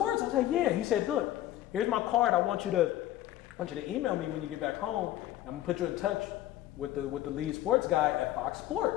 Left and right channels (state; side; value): quieter; right; 13.9 dB